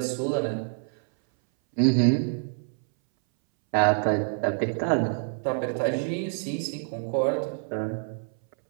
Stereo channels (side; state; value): left; silent; 60 dB below the other